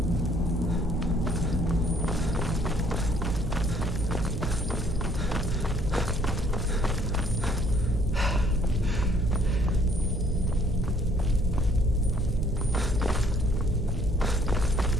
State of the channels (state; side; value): normal; both; correlation 0.62